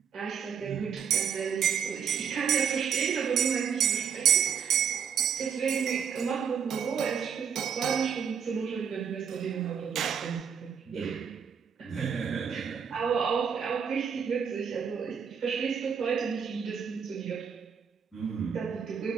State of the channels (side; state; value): left; quieter; 7.3 dB